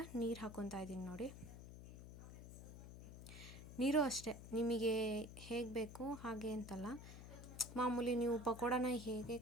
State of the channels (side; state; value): left; noise; hum, 12 dB below the sound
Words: ನೀರು ಹಾಕ್ಕೊತಾ ಇದ್ದೀನಿ. ನೋಡಿ, ನೀರು ಅಷ್ಟೇ ನಿಮಗೆ ಹೇಗೆ ಬೇಕು ಹಾಗೆ ಅಂತಲ್ಲ. ಮಾಮೂಲಿ ನೀವು ಪಕೋಡನ ಹೇಗೆ